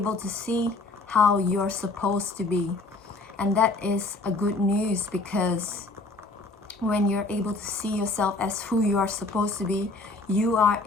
to see how you're supposed to be. And that is a good news, because when you're able to see yourself as who you are supposed to be, you are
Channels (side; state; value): right; quieter; 3.1 dB